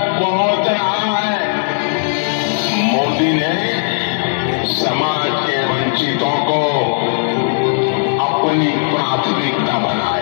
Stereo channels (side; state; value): right; silent; 59 dB below the other